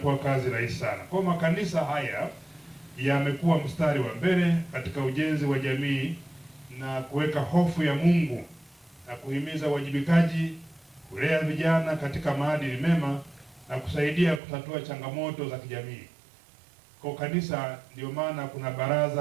kazi rahisi sana. Kwa makanisa haya yamekuwa mstari wa mbele katika ujenzi wa jamii na kuweka hofu ya Mungu na kuhimiza uwajibikaji, kulea vijana katika maadili mema na kusaidia kutatua changamoto za kijamii. Kwa kanisa ndio maana kuna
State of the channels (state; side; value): drops out; left; at 14.4 s